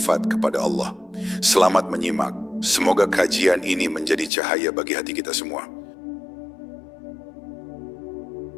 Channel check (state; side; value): drops out; right; at 4.3 s